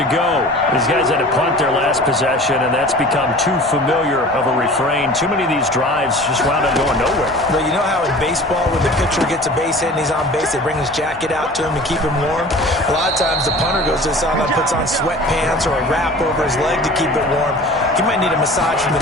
go. These guys had to punt their last possession, and that's become too familiar of a refrain. Too many of these drives just wound up going nowhere. Well, you know how in baseball, when the pitcher gets a base hit and he's on base, they bring his jacket out to him to keep him warm? A lot of times the punter goes to the sideline, puts on sweatpants or a wrap over his leg to keep it warm. He might need a massage from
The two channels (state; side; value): normal; both; correlation 0.42